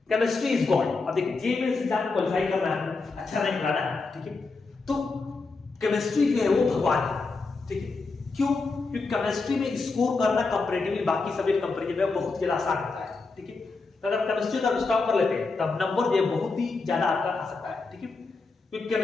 Chemistry is God. अब देखिए जे मेंस एग्जाम को क्वालिफाई करना है, अच्छा रैंक लाना है, ठीक है, तो केमिस्ट्री जो है वो भगवान है, ठीक है। क्यों? क्योंकि केमिस्ट्री में स्कोर करना कंपैरेटिवली बाकी सब्जेक्ट कंपैरिजन में बहुत ज्यादा आसान होता है, ठीक है। तो अगर केमिस्ट्री का स्टॉप कर लेते हैं तब नंबर जो है बहुत ही ज्यादा आपका आ सकता है, ठीक है। क्योंकि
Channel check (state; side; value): quieter; right; 4.0 dB